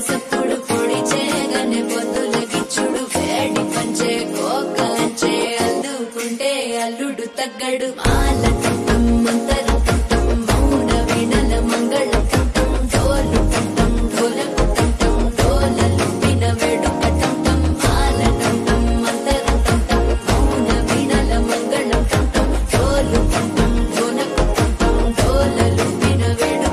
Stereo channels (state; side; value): identical; both; correlation 1.00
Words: సప్పుడు పొడి చేయగానే పొద్దులకిచ్చుడు వేడి పంచే కోకలంచే అల్లుకుంటే అల్లుడు తగ్గడు మాల టంటం మంతరం టంటం మౌన వీణల మంగళం టంటం డోలు టంటం డోలకు టంటం డోలలు విన వేడుక టంటం మాల టంటం మంతరం టంటం మౌన వీణల మంగళం టంటం డోలు టంటం డోలకు టంటం డోలలు విన వేడుక